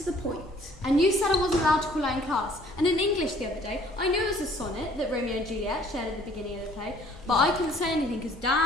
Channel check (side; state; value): both; normal; correlation 0.57